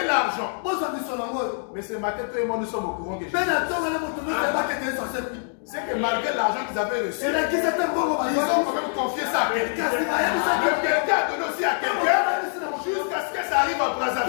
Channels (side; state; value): right; silent; 61 dB below the other